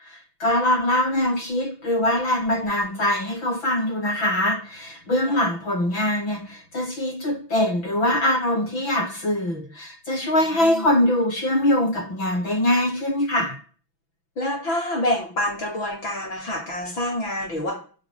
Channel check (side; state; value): right; late; 6.0 ms